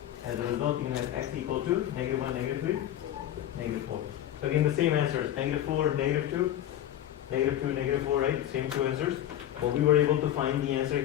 As a result, you can have x equal to negative 1, negative 3, negative 4. So again, the same answers, negative 4, negative 2, negative 2, negative 4, right? Same 2 answers. But we were able to find the answer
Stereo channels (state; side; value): quieter; right; 11.8 dB